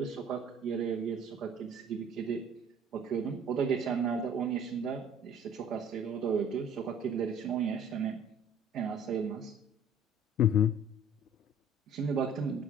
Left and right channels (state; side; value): normal; both; correlation 0.51